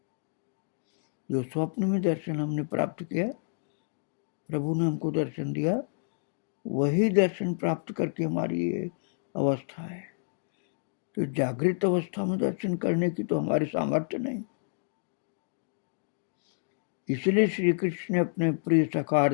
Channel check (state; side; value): silent; right; digital silence